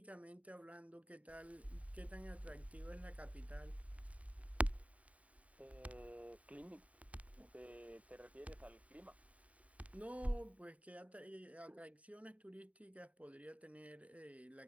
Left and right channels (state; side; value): late; left; 0.067 ms